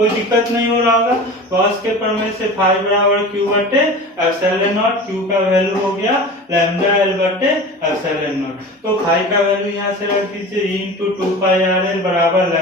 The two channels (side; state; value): both; normal; correlation 0.35